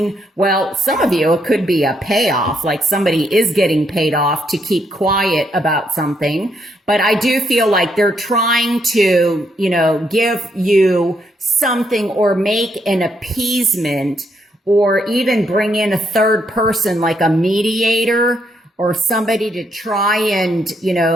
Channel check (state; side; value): normal; both; correlation 0.75